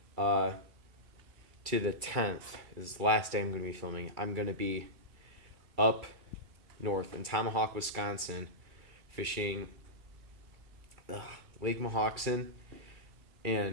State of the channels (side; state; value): left; late; 2.3 ms